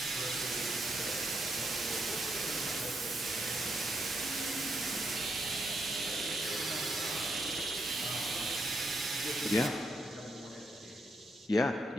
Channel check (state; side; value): normal; both; correlation 0.79